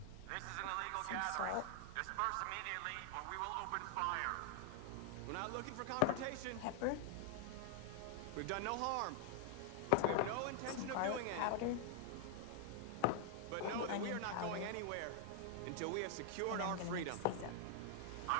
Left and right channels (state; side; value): different; both; correlation 0.00